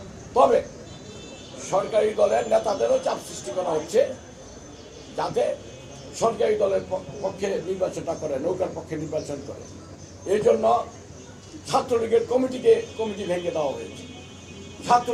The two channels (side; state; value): both; identical; correlation 1.00